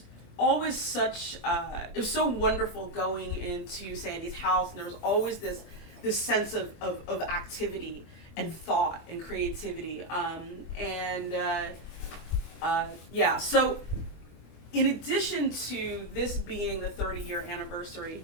always such, it was so wonderful going into Sandy's house, and there was always this sense of activity and thought and creativity. So in addition to this being the 30-year anniversary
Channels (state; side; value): late; right; 24 ms